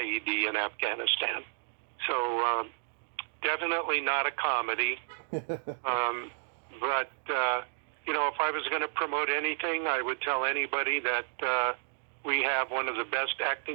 in Afghanistan. So definitely not a comedy. But if I was going to promote anything, I would tell anybody that we have one of the best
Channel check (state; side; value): silent; left; digital silence